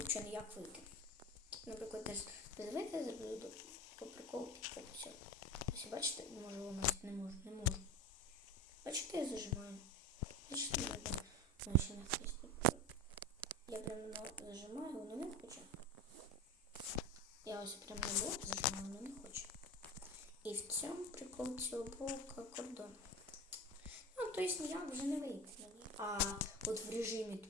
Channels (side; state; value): both; normal; correlation 0.28